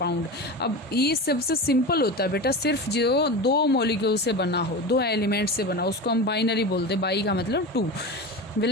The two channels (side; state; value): both; normal; correlation 0.26